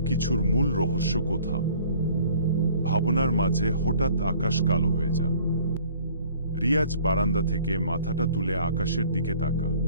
কিছুর মূল রহস্য কোথাও। ভাবনার মাঝে হঠাৎ আকাশ কালো হয়ে যা। রিয়াজ বারান্দা থেকে মাথাটা তুলে আকাশের দিকে তাকা।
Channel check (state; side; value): inverted; both; correlation -0.53